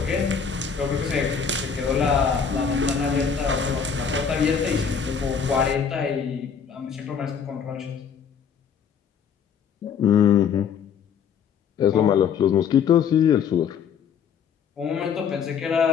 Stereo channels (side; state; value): right; quieter; 7.0 dB